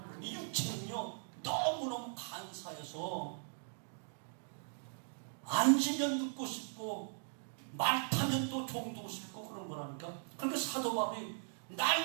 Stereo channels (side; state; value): left; silent; digital silence